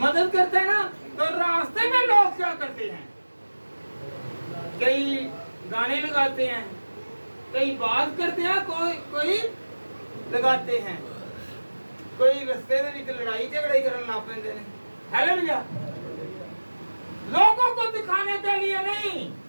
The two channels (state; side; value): inverted; both; correlation -1.00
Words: मदद करते हैं ना। तो रास्ते में लोग क्या करते हैं, कई गाने लगाते हैं, कई बात करते हैं, कोई लगाते हैं, कोई रस्ते में निकल लड़ाई झगड़ाई करने लग पैंदे ने। हालेलुया। लोगों को दिखाने के लिए नहीं,